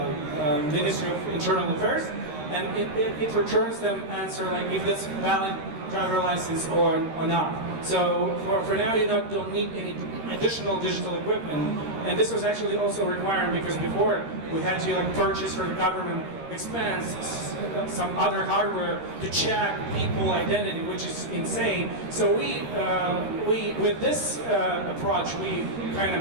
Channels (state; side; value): late; left; 13 ms